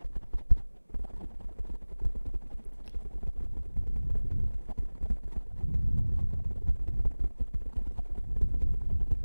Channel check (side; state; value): both; inverted; correlation -1.00